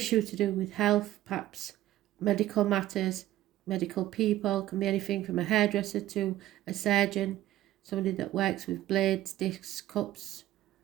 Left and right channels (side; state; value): left; quieter; 14.4 dB